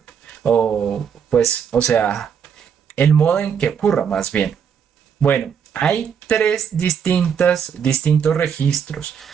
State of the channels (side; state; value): left; quieter; 7.4 dB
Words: O pues, o sea, el modo en que ocurra más bien. Bueno, hay tres distintos registros,